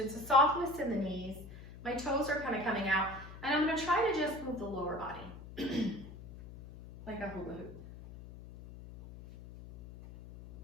a softness in the knees. My toes are kind of coming out. And I'm going to try to just move the lower body. Like a hula hoop.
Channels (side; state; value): left; noise; hum, 14 dB below the sound